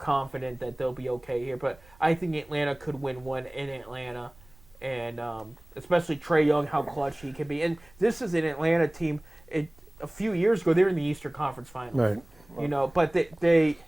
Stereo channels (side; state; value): right; noise; rumble, 26 dB below the sound